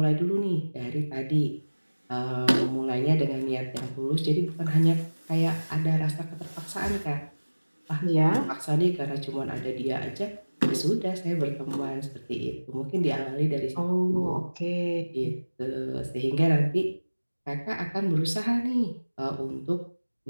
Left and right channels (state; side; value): inverted; both; correlation -1.00